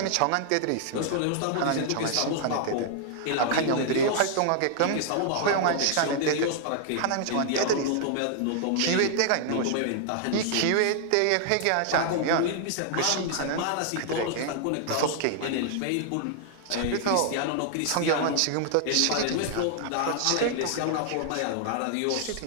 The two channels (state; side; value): different; both; correlation 0.00